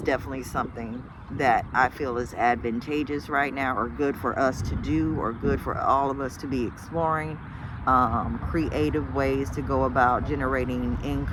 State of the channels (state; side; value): identical; both; correlation 1.00